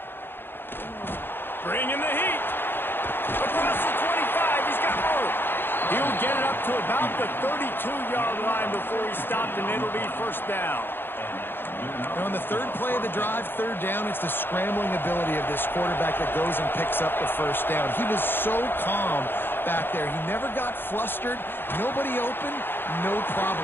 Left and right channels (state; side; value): late; right; 0.10 ms